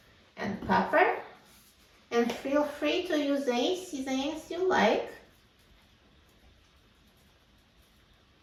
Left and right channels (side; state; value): both; identical; correlation 1.00